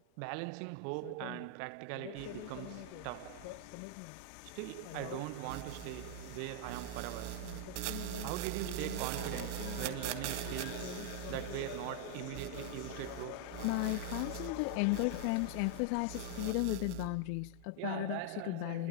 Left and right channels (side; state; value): both; different; correlation -0.01